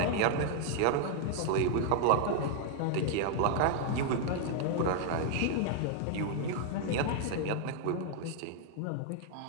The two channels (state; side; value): different; both; correlation 0.00